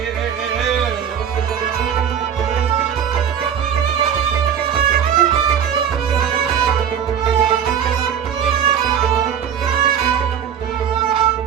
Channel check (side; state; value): left; quieter; 8.4 dB